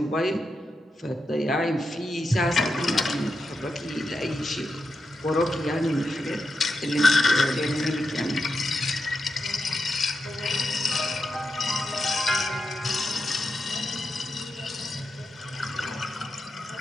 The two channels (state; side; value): normal; both; correlation 0.87